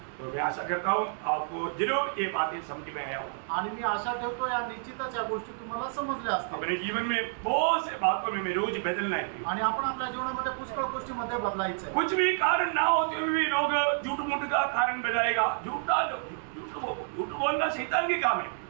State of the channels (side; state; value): left; silent; digital silence